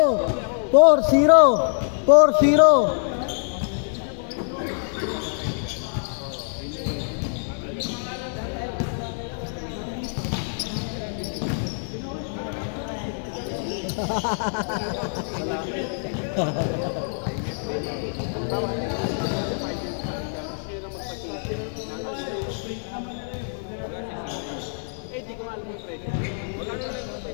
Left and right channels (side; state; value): right; silent; 62 dB below the other